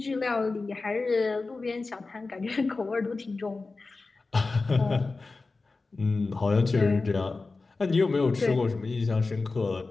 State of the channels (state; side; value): quieter; right; 3.7 dB